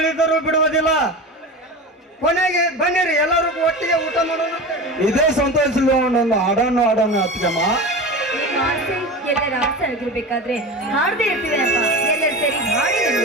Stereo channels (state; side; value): normal; both; correlation 0.29